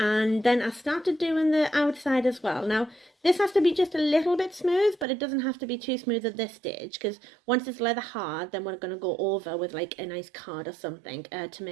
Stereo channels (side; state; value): left; drops out; at 5.1 s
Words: then I started doing the outside as well. Now this has to be just a little bit smooth, but it doesn't have to be too smooth at this stage, because once it's leather hard, then we're going to go over with like a nice card or something to